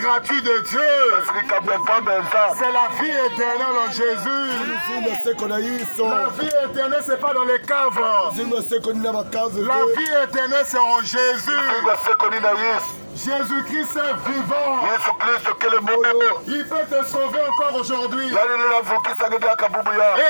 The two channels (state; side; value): inverted; both; correlation -1.00